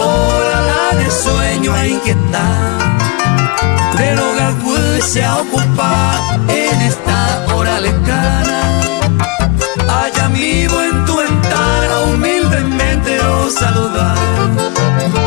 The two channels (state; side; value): quieter; right; 29.0 dB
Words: la de sueño a inquietar del hogar pues se ocupa en esta hora lejana allá vivo en tu ventana humildemente lo saludar